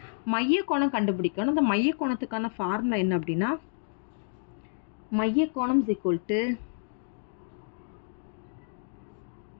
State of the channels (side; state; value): right; silent; digital silence